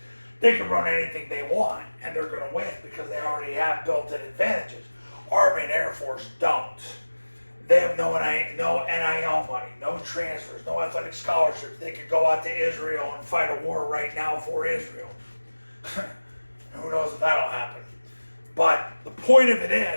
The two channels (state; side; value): inverted; both; correlation -1.00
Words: they can run anything they want and they're going to win because they already have built-in advantages. Army and Air Force don't. They have no NIL money, no transfers, no athletic scholarships. They could go out to Israel and fight a war right now for Israel. Who knows if that'll happen. But the point of it